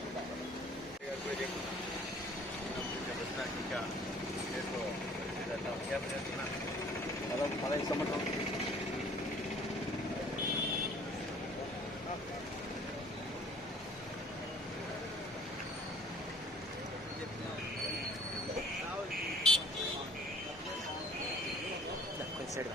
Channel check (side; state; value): both; normal; correlation 0.53